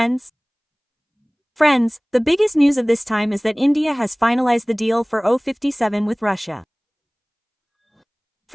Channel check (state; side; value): identical; both; correlation 1.00